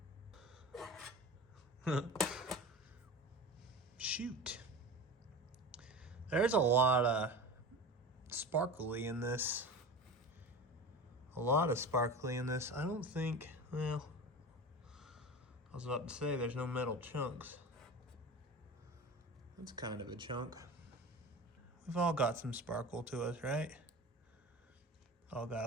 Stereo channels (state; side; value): normal; both; correlation 0.31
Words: that? Shoot. There's a lot of sparkly in this. A lot of sparkly in this. I don't think, well, I was about to say there's no metal chunks. That's kind of a chunk. We've all got some sparkle to us, right? All got